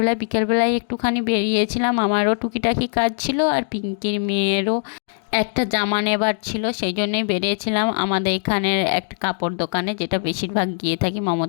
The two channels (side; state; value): right; silent; digital silence